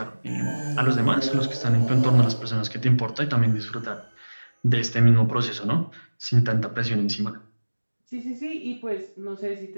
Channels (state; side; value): inverted; both; correlation -1.00